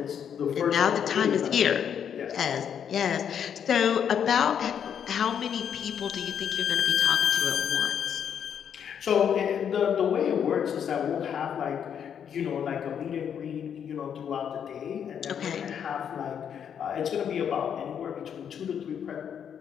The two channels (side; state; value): right; quieter; 8.3 dB